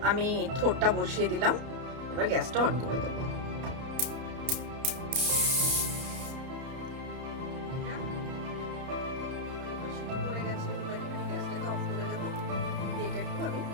আমি থোড়টা বসিয়ে দিলাম, এবার গ্যাসটা অন করে দেব।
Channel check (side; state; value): left; late; 31 ms